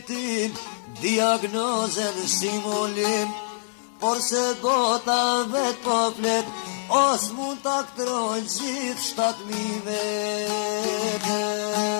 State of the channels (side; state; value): right; silent; digital silence